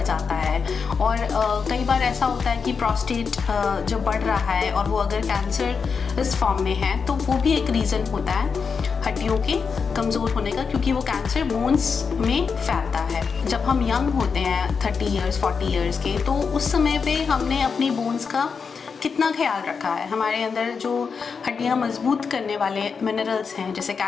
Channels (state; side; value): quieter; right; 5.6 dB